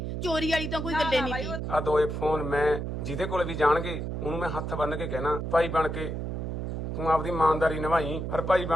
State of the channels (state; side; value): noise; right; hum, 4 dB below the sound